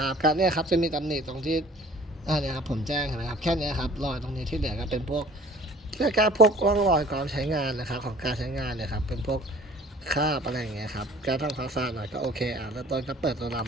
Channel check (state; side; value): normal; both; correlation 0.50